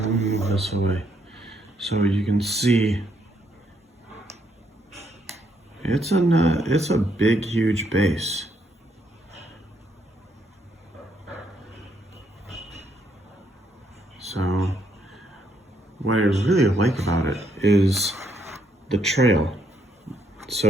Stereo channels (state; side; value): normal; both; correlation 0.73